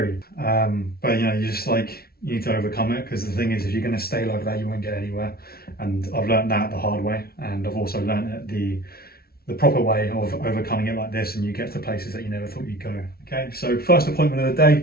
But you need to overcome it, because the thing is, if you're going to stay like that, you won't get anywhere. And I've learned that the hard way, and I've also learned it the proper way of overcoming it like this, and you get to places that you never thought you'd go. Okay, so first appointment of the day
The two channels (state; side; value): late; right; 0.44 ms